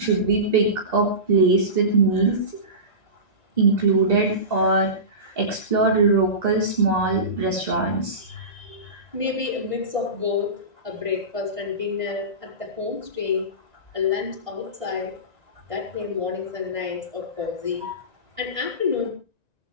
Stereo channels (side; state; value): right; late; 1.9 ms